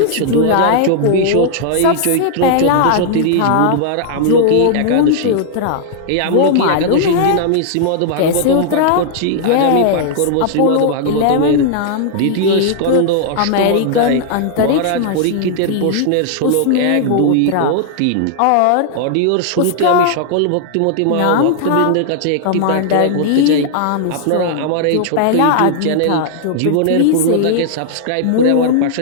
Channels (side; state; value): both; different; correlation -0.01